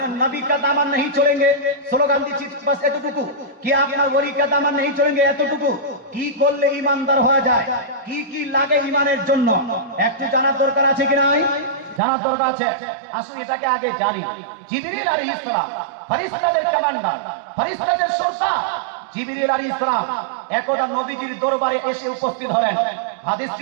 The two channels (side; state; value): left; drops out; at 12.0 s